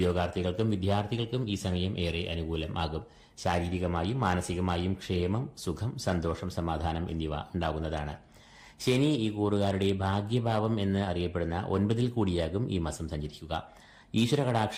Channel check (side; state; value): both; identical; correlation 1.00